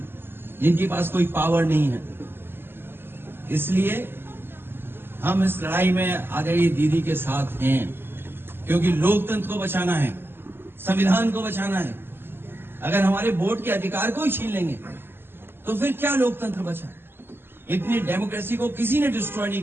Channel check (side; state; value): left; late; 0.11 ms